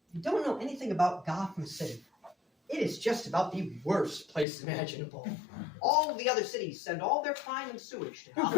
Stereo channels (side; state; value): right; drops out; at 4.5 s